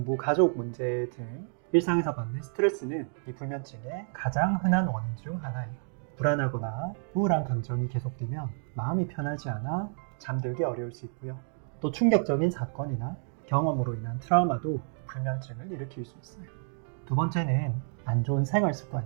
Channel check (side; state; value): left; silent; 56 dB below the other